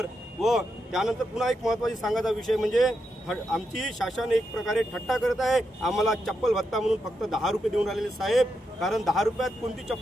व त्यानंतर पुन्हा एक महत्त्वाची सांगायचा विषय म्हणजे आमची शासन एक प्रकारे थट्टा करत आहे। आम्हाला चप्पल भत्ता म्हणून फक्त 10 रुपये देऊन राहिलेले साहेब, कारण 10 रुपयात कोणती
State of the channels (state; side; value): normal; both; correlation 0.84